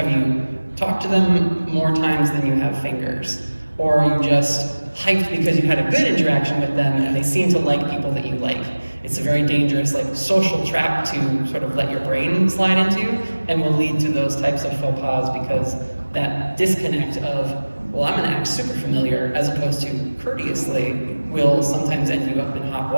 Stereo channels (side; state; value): both; inverted; correlation -1.00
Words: you talked to them more times than you have fingers? Or are you just hyped because you had a good interaction with them and they seem to like people that you like? It's a very dangerous like social trap to sort of let your brain slide into, and will lead to those types of faux pas, because that disconnect of, well, I'm gonna act super familiar as opposed to courteously will sometimes end you up in hot